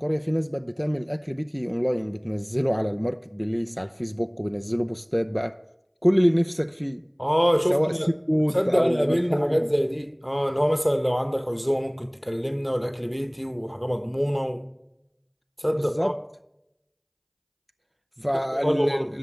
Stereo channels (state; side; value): identical; both; correlation 1.00